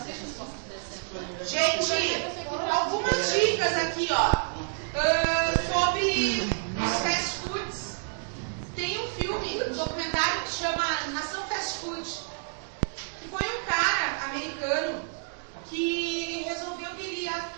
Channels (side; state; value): left; silent; digital silence